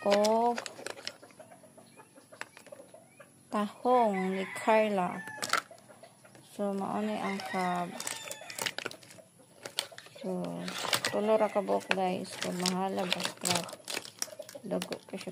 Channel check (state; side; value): identical; both; correlation 1.00